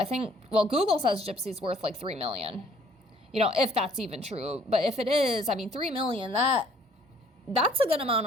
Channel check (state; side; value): normal; both; correlation 0.59